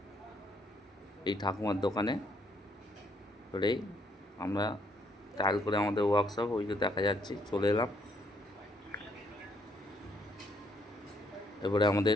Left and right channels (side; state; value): both; normal; correlation 0.69